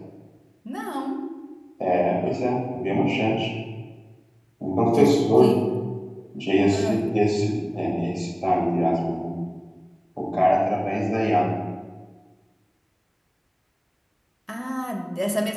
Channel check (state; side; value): identical; both; correlation 1.00